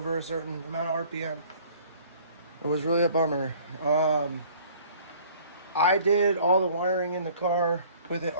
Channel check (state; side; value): inverted; both; correlation -0.53